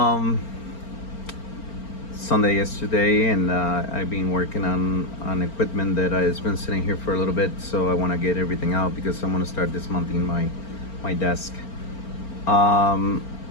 Sunday yesterday, and I've been working on equipment that has been sitting here for a little bit. So I want to get everything out because I'm going to start dismounting my desk. I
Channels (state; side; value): late; right; 4.4 ms